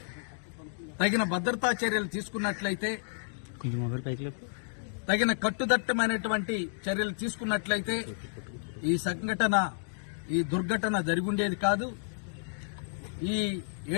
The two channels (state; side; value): silent; right; digital silence